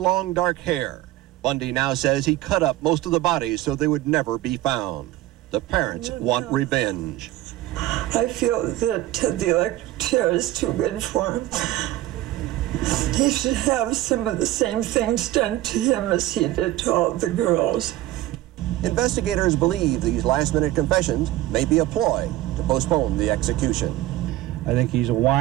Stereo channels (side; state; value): left; quieter; 15.4 dB